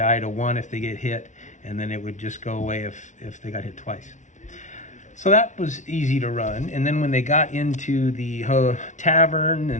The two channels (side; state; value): right; late; 0.36 ms